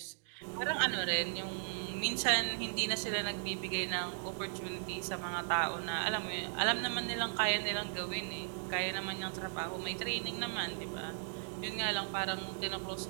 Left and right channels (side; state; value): left; silent; digital silence